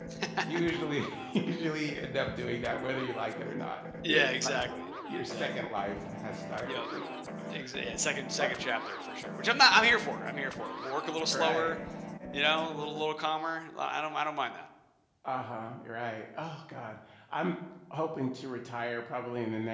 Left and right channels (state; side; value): identical; both; correlation 1.00